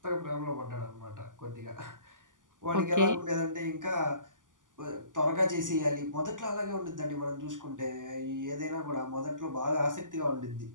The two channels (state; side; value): late; left; 0.88 ms